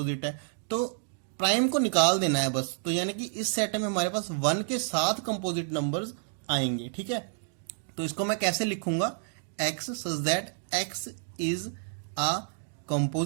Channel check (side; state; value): left; silent; digital silence